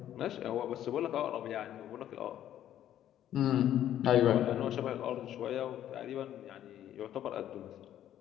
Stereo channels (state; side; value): quieter; right; 11.4 dB